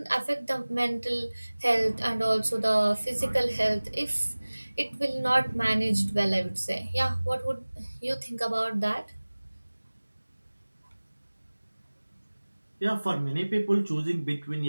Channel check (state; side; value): inverted; both; correlation -1.00